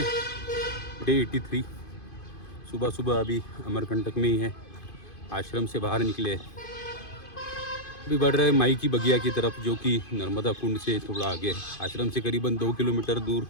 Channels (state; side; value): late; right; 2.5 ms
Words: डे 83। सुबह सुबह अभी अमरकंटक में ही है, आश्रम से बाहर निकले, अभी बढ़ रहे माई की बगिया की तरफ, जो कि नर्मदा कुंड से थोड़ा आगे है। आश्रम से करीबन 2 किलोमीटर दूर